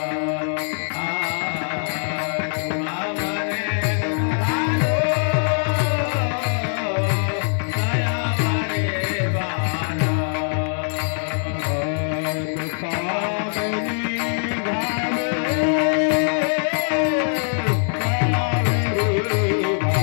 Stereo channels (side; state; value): right; silent; 64 dB below the other